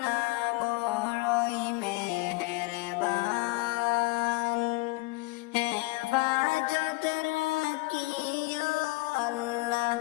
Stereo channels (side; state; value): right; quieter; 23.0 dB